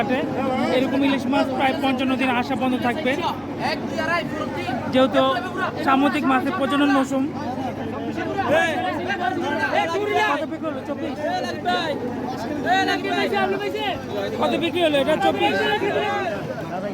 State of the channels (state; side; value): identical; both; correlation 1.00